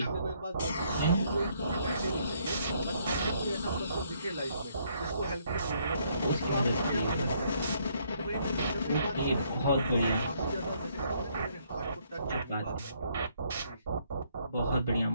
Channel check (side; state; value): both; inverted; correlation -0.68